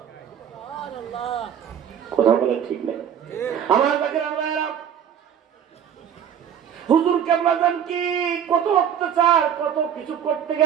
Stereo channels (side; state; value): left; quieter; 8.8 dB